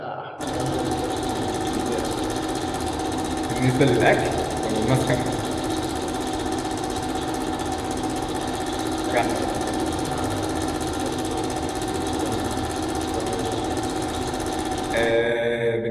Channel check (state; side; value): identical; both; correlation 1.00